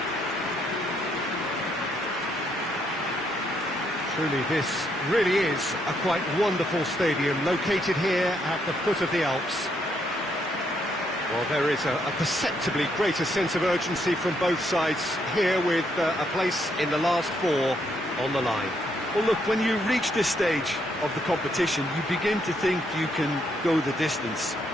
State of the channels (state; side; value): normal; both; correlation 0.74